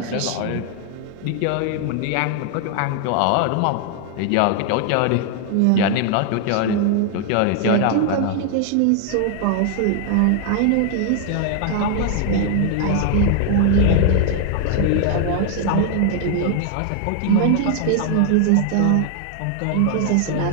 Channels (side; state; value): both; different; correlation 0.00